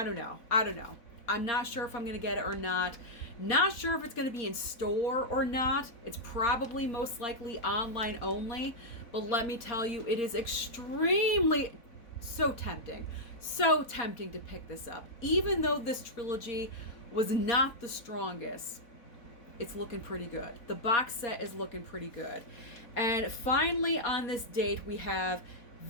don't know. I'm not sure if I'm going to get it or not. Not sure if it's going to be in store or not. It's probably most likely online only. But let me tell you, it is extremely so tempting to pick this up. Even though this trilogy was not the strongest, it's looking pretty good. The box set is looking pretty good. And finally on this date, we have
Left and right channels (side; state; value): right; late; 4.0 ms